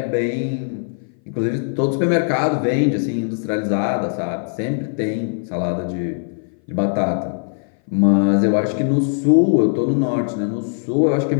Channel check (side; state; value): right; silent; 59 dB below the other